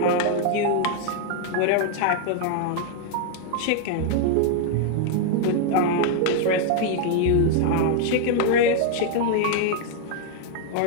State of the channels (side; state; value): both; different; correlation 0.00